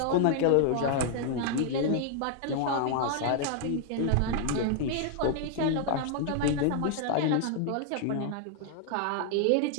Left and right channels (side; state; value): both; different; correlation 0.00